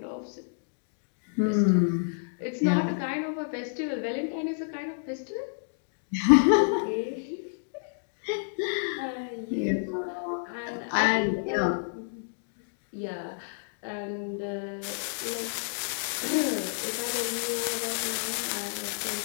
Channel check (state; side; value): silent; right; digital silence